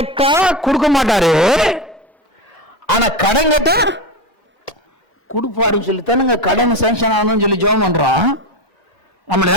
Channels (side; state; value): both; normal; correlation 0.19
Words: கொடுக்க மாட்டாரு, ஆனா கடன் கேட்டா கொடுப்பாருன்னு சொல்லி தானுங்க கடன் சாங்ஷன் ஆகணும்னு சொல்லி ஜெபம் பண்றோம். நம்மளோட